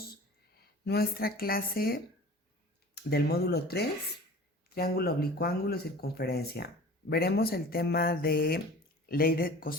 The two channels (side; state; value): both; normal; correlation 0.41